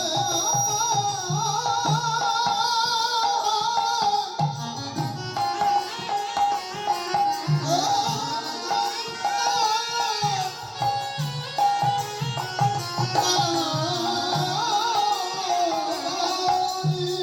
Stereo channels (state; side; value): identical; both; correlation 1.00